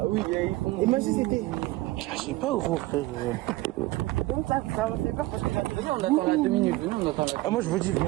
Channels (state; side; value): quieter; left; 18.9 dB